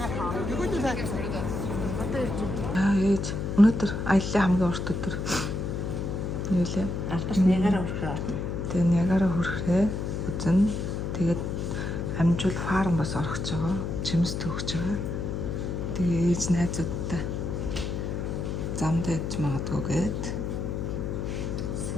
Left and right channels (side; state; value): left; noise; hum, 3 dB below the sound